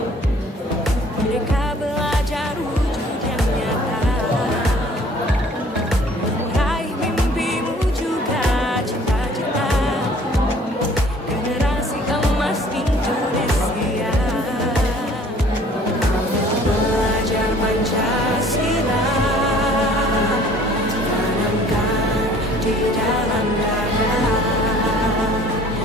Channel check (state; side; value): normal; both; correlation 0.54